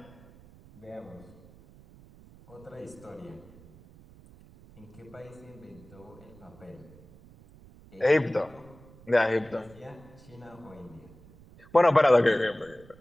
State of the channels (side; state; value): right; noise; rumble, 23 dB below the sound